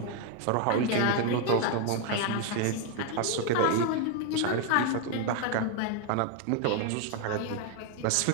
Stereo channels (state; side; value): different; both; correlation 0.01